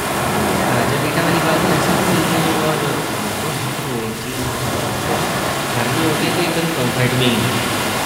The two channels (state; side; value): identical; both; correlation 1.00